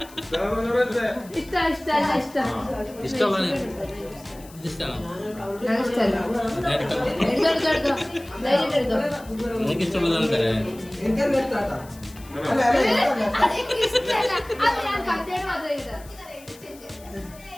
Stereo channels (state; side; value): noise; left; hiss, 22 dB below the sound